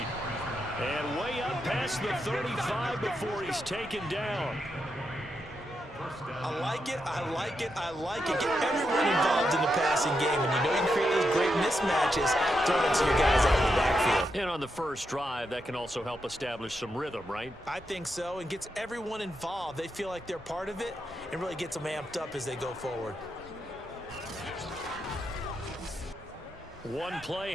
And way up past the 35 before he's taken down. I like it, I like it, I like it. Get everyone involved in the passing game, and you know you can create those great mismatches throwing it to your guys out of the backfield. And on the first drive, that can also help establish some rhythm, right? I think so, and gets everyone involved. They feel like they're part of it, and really gets them amped up as they go forward. One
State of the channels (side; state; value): both; normal; correlation 0.84